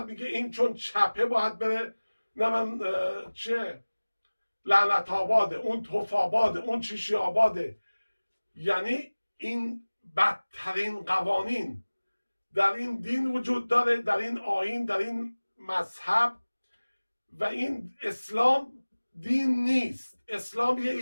میگه این چون چپه باید بره نمن چه لعنت آباده، اون توف آباده، اون چیشی آباده. یعنی این بدترین قوانین در این دین وجود داره، در این آیین، در این مذهب. و این اسلام دین نیست، اسلام یه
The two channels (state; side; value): inverted; both; correlation -1.00